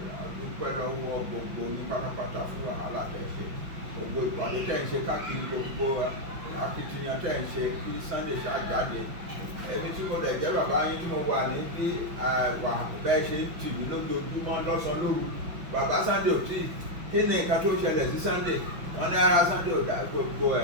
Àdúpẹ́ lọ́wọ́ gbogbo ní pátápátá fún wàhálà tẹ́ ṣe. Gbogbo ìpàdé tẹ́ ń ṣe káàkiri gbogbo akitiyan tẹ́ ń ṣe kí Sunday ṣáà jáde. Èmi tí mo lè jẹ́ bàbá yín tí mo wà ní bí bẹ́ẹ̀ ṣe ń tì mí lójoojúmọ́ lọ́sàn-án lóru. Bàbá Sunday ò tí kí ni nǹkan tó ṣẹlẹ̀ sí Sunday? Wọ́n ní ara Sunday ò dá gbogbo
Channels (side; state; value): left; late; 5.7 ms